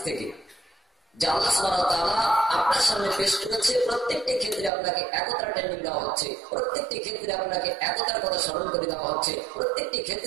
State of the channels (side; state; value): left; drops out; at 4.7 s